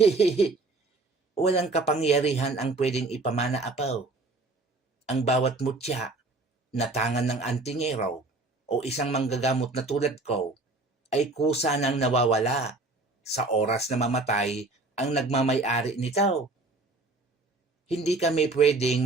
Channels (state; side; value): quieter; left; 3.3 dB